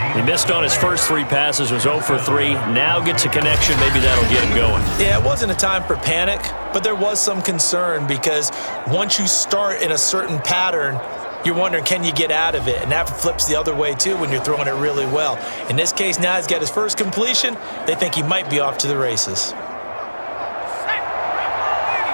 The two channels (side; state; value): both; inverted; correlation -1.00